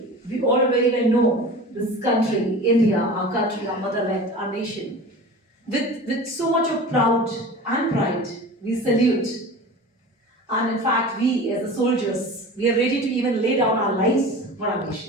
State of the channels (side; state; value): both; normal; correlation 0.36